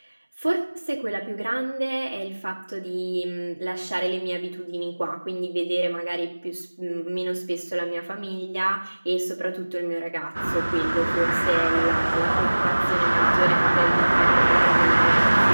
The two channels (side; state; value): both; inverted; correlation -1.00